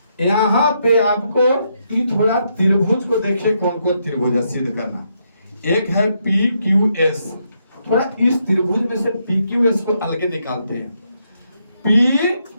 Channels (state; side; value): inverted; both; correlation -0.78